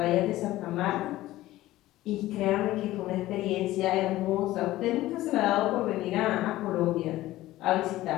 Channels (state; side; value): quieter; right; 16.1 dB